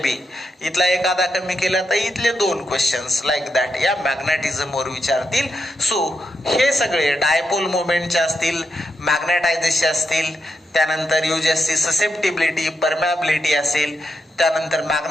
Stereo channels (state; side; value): normal; both; correlation 0.84